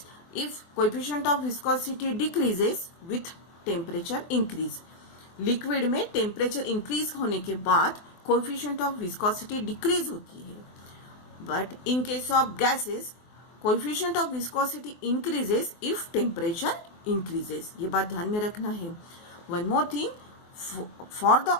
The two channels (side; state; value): right; late; 24 ms